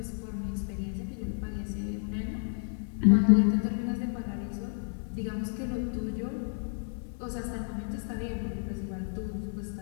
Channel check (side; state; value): right; silent; 57 dB below the other